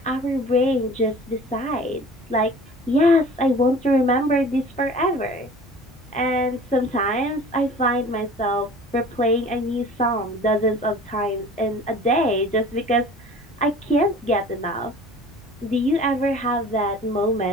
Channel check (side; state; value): both; normal; correlation 0.44